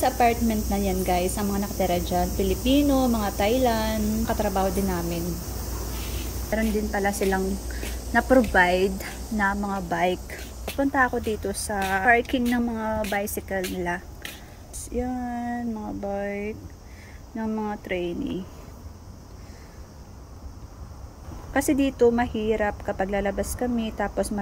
apartment na yan, guys, ang mga nakatira dyan, Pilipino, mga Thailand, katrabaho din namin. Meron din pala silang na-provide na mga bike. Punta ako dito sa parking ng mga bicycle nila. Yan, mga bike ng mga trainee. Kasi dito mahirap kapag lalabas kami tapos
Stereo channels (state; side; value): identical; both; correlation 1.00